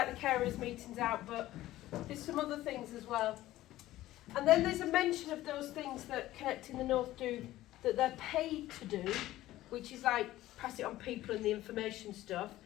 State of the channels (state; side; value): quieter; right; 15.4 dB